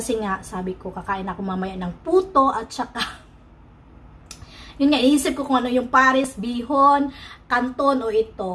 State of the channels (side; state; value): both; identical; correlation 1.00